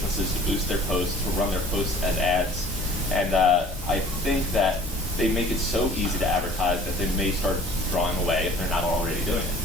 to boost their posts, to run their posts as ads. And I think that they make it so easy to advertise that they may start drawing away if they're not already doing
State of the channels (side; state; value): both; normal; correlation 0.49